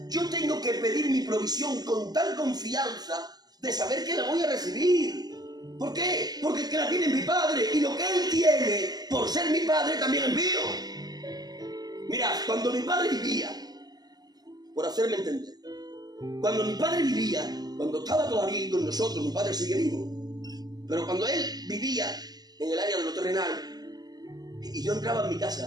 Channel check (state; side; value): late; left; 0.19 ms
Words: Yo tengo que pedir mi provisión con tal confianza de saber que la voy a recibir. ¿Por qué? Porque el que la tiene es mi padre, y lo que él tiene por ser mi padre también es mío. Mirad, cuando mi padre vivía, por hacerme entender, cuando mi padre vivía, cuando estaba todavía con nosotros, mi padre sigue vivo, pero cuando él vivía en el área de lo terrenal, y yo entraba en mi